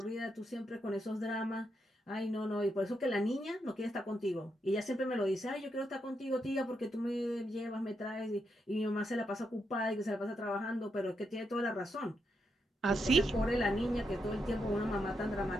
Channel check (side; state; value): both; normal; correlation 0.82